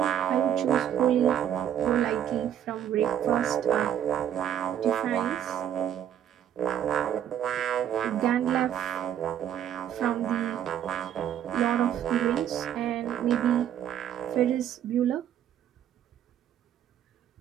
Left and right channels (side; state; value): left; quieter; 10.2 dB